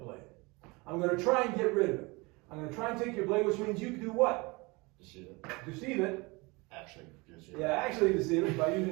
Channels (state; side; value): quieter; left; 25.5 dB